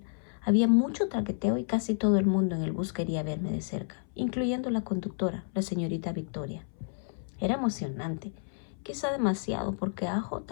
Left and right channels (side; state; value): right; silent; 57 dB below the other